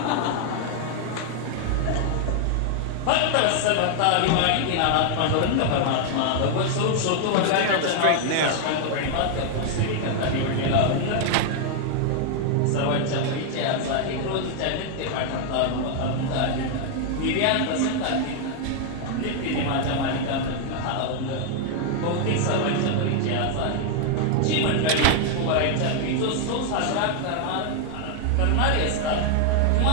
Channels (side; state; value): both; different; correlation 0.00